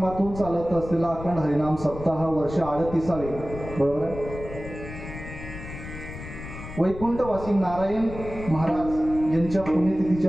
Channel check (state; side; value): noise; left; rumble, 11 dB below the sound